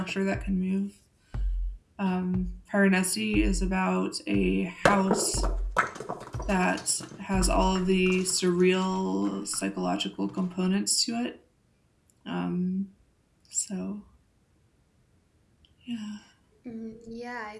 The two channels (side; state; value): both; identical; correlation 1.00